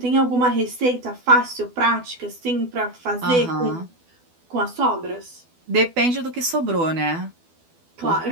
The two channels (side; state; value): left; late; 12 ms